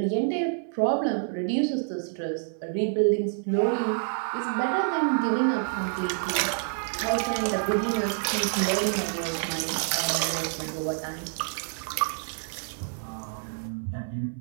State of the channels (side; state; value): left; silent; 58 dB below the other